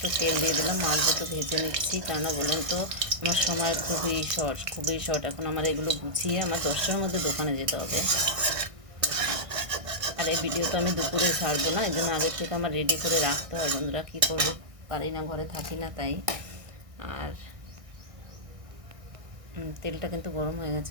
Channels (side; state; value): left; late; 1.6 ms